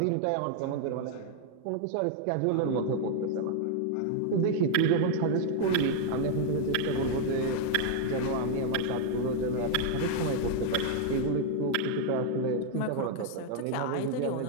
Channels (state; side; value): different; both; correlation 0.00